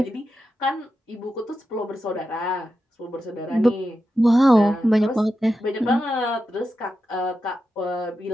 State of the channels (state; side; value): normal; both; correlation 0.89